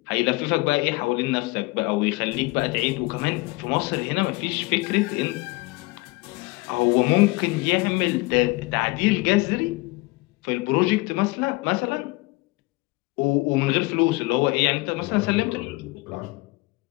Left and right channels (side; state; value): right; quieter; 23.5 dB